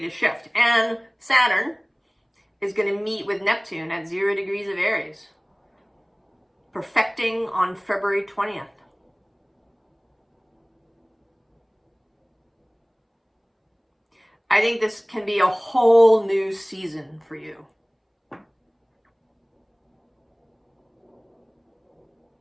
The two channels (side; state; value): both; identical; correlation 1.00